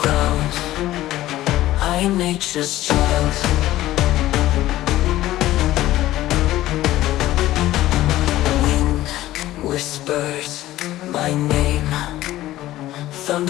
I'm nature's child. Wind whispers my name,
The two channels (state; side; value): quieter; right; 15.2 dB